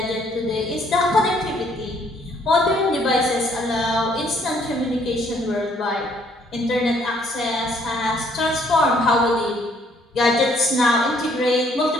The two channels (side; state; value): both; normal; correlation 0.65